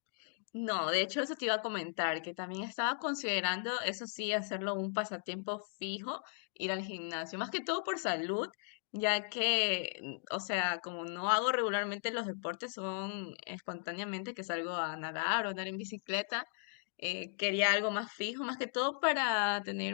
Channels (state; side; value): silent; right; digital silence